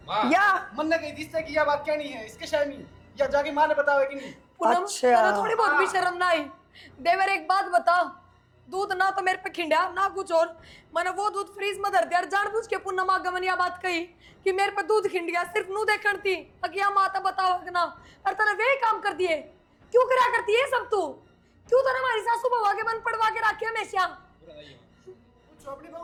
या मन ने कही जिससे कि यह बात कहनी है इसके शामी, या जाके माँ ने बतावे कि नहीं? पूनम अच्छा। तेरा थोड़ी बहुत भी शर्म ना आई? देवर एक बात बता, दूध ना तो मेरे पे खिंडा ना कुछ और, मैंने वो दूध फ्रीज में धर दिया, जानबूझ के पूनम आगमन यह बात कही कि मेरे पे दूध खिंड गया, सिर्फ नू देखण थी अगिया माता बताओ ना, और तने वे काम कर दिए। क्यों करा करती है सब तू? क्यों तो हमारी सासू बहू के बंद पड़वा के रखे हमेशा?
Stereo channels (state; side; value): identical; both; correlation 1.00